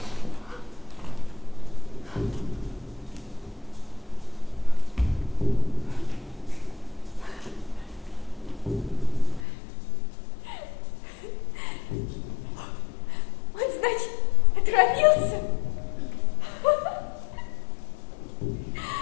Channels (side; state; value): right; drops out; at 9.5 s